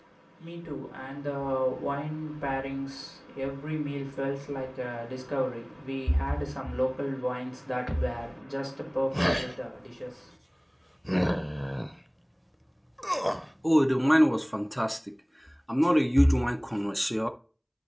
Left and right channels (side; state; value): both; identical; correlation 1.00